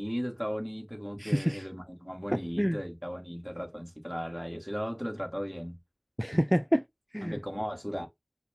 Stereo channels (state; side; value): identical; both; correlation 1.00